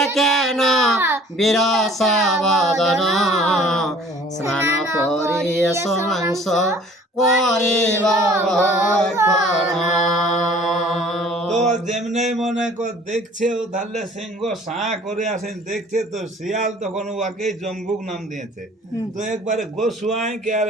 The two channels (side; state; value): both; normal; correlation 0.52